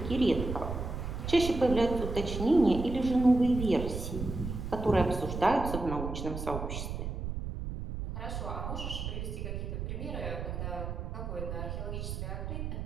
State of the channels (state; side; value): noise; right; rumble, 5 dB below the sound